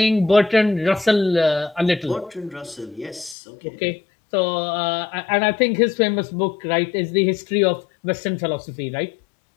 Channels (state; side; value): drops out; right; at 3.4 s